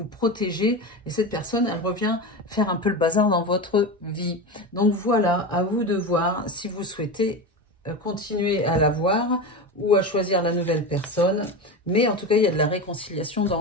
protéger, et cette personne, elle revient faire un peu le bazar dans votre vie. Donc voilà, à vous de voir si vous souhaitez continuer à la voir ou à choisir la nouvelle personne. Mais en tout cas, il y a de la réconciliation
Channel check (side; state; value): both; normal; correlation 0.23